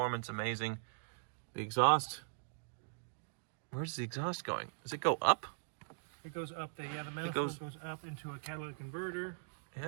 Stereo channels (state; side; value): silent; left; digital silence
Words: amazing. The exhaust. Where's the exhaust going? Does it go up? It goes up there. Yeah, the manifold goes up into a catalytic converter.